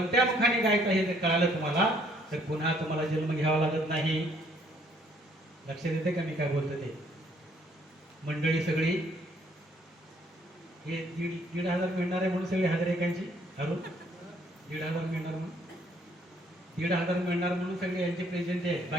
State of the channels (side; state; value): both; normal; correlation 0.65